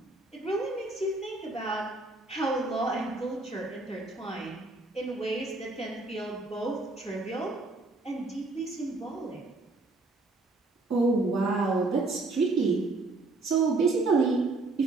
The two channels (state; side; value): quieter; left; 3.3 dB